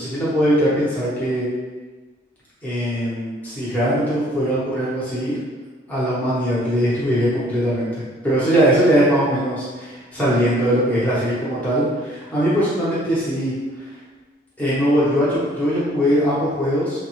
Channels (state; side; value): normal; both; correlation 0.59